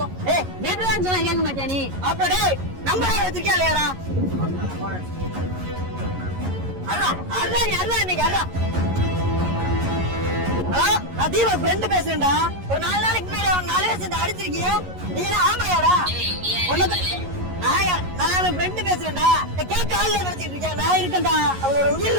ஏய் நேத்துதான் சொன்னா கேட்க மாட்டியா நீ? அப்படியே நம்பரே வச்சிருக்கியா இல்லையாடா? அல்ல இன்னைக்கு அல்ல. ஹலோ நான் தீபா ஃப்ரெண்ட் பேசுறேன்டா. ஒரு 4 நாளைக்கு முன்னாடி அவன் 4 பேர் சேர்ந்து அடிச்சிருக்கீங்க. நீ என்ன ஆமையாடா? நான் ஃப்ரெண்ட் பேசுறேன்டா. கேட்க ஆள் நினைச்சிட்டு இருக்கேன். நான் இருக்கேன்டா. அவளோட உயிர்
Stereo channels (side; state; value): left; late; 11 ms